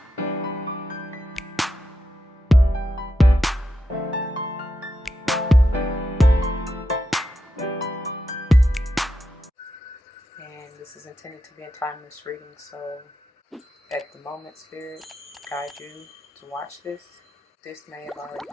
And this is intended to be a timeless reading, so at the moment, Spirit guide you to watch this. This may have already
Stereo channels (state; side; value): normal; both; correlation 0.86